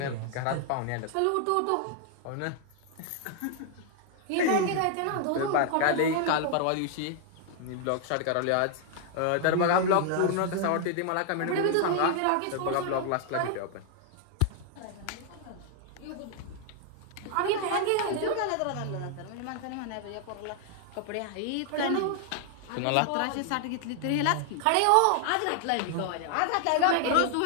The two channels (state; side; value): different; both; correlation 0.00